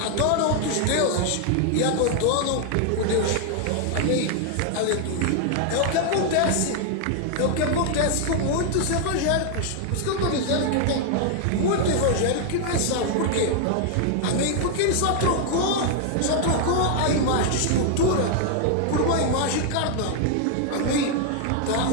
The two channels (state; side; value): different; both; correlation 0.00